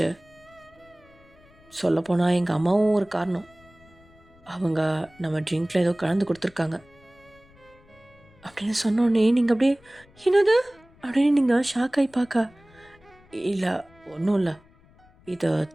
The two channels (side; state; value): left; noise; rumble, 28 dB below the sound